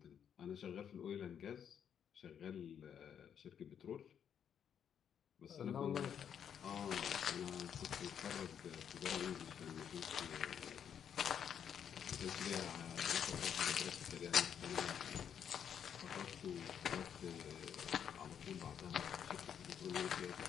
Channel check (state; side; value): quieter; right; 8.4 dB